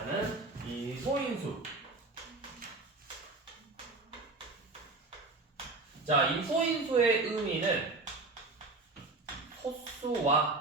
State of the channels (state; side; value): quieter; left; 3.5 dB